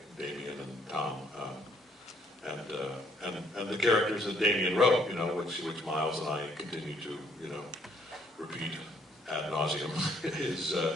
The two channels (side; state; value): both; normal; correlation 0.65